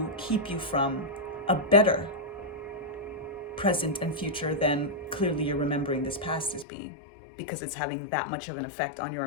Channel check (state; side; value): drops out; right; at 6.7 s